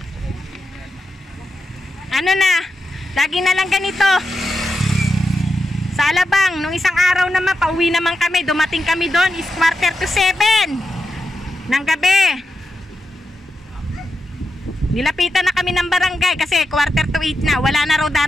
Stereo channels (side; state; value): both; normal; correlation 0.87